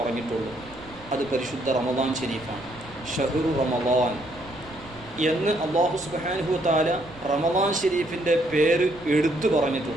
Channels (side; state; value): right; noise; rumble, 21 dB below the sound